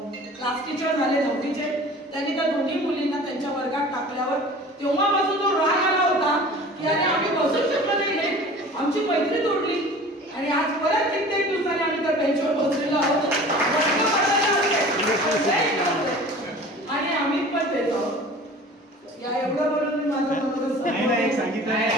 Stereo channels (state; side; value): normal; both; correlation 0.42